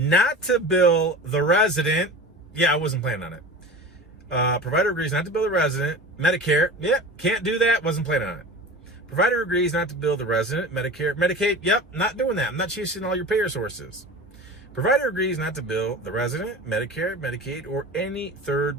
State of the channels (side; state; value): both; normal; correlation 0.34